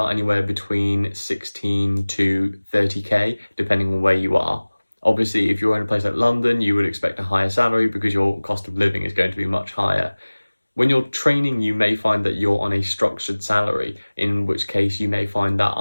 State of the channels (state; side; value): inverted; both; correlation -1.00